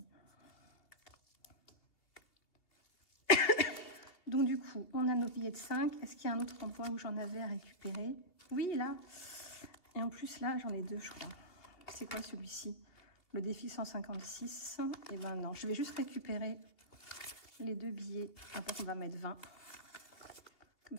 Donc du coup, on a nos billets de 5. Est-ce qu'il y a un autre endroit où j'en avais à récupérer? Oui, là. Et en plus, là, j'en ai 2, je crois. C'est quoi celui-ci? Le défi 156. Et ben non, je vais juste récupérer les 2 billets. Après, on va mettre 20. Comme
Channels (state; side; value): late; right; 2.7 ms